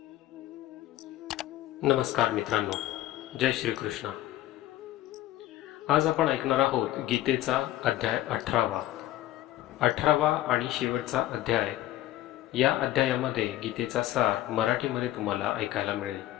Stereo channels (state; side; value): quieter; right; 14.7 dB